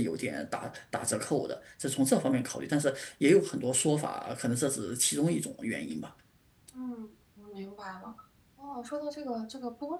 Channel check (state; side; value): identical; both; correlation 1.00